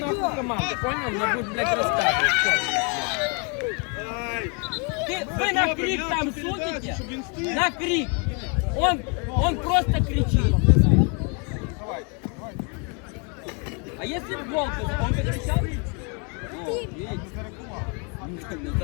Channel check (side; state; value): right; quieter; 34.6 dB